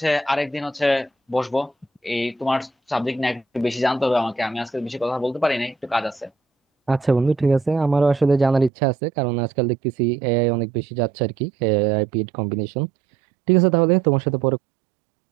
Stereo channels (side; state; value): left; drops out; at 8.7 s